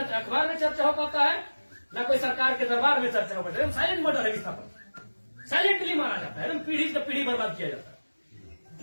में चर्चा हो पाता है, न कोई सरकार के दरबार में चर्चा हो पाता है। साइलेंट मर्डर है विस्थापन, साइलेंटली मारा जाता है, एकदम पीढ़ी से पीढ़ी बर्बाद किया जाता है।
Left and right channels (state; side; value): inverted; both; correlation -1.00